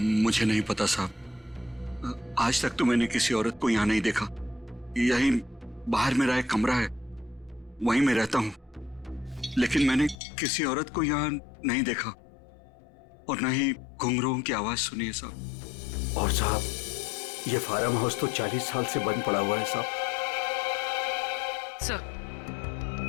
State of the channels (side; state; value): right; drops out; at 10.2 s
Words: मुझे नहीं पता साहब, आज तक तो मैंने किसी औरत को यहाँ नहीं देखा। यहीं बाहर मेरा एक कमरा है, वहीं मैं रहता हूँ। लेकिन मैंने किसी औरत को यहाँ नहीं देखा और न ही घुंघरूओं की आवाज सुनी है साहब। और साहब, ये फार्म हाउस तो 40 साल से बंद पड़ा हुआ है साहब।